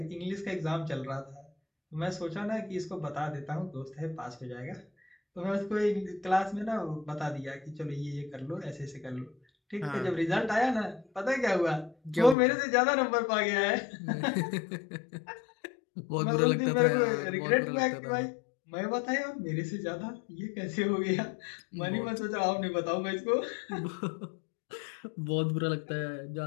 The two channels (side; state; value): right; drops out; at 12.4 s